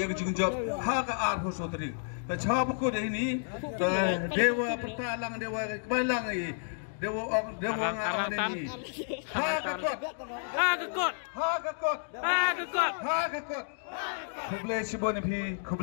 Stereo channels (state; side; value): silent; right; digital silence